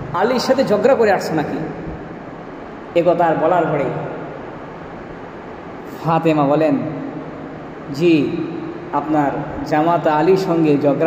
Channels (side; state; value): both; identical; correlation 1.00